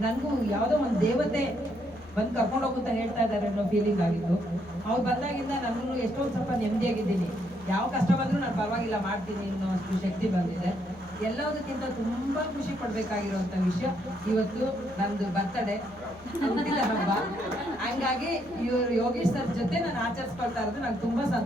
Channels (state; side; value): noise; left; hum, 25 dB below the sound